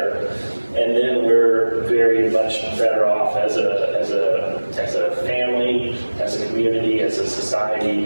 And then we're very much better off as a family, as a community, as a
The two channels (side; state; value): both; inverted; correlation -1.00